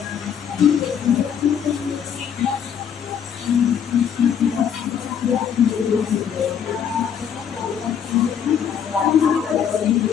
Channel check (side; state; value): right; quieter; 8.1 dB